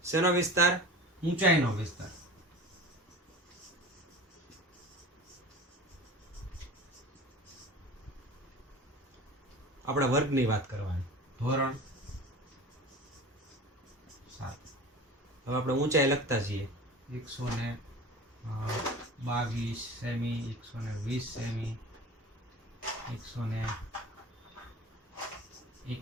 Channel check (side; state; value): both; normal; correlation 0.36